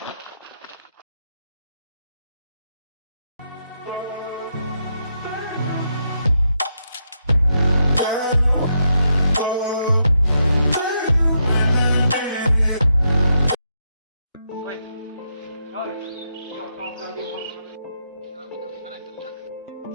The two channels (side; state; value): both; inverted; correlation -0.81